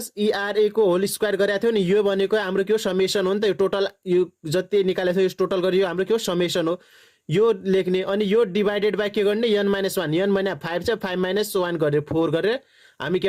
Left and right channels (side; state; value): both; identical; correlation 1.00